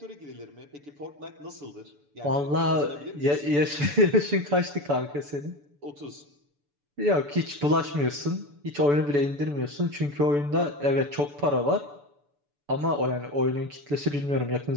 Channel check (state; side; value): late; left; 6.9 ms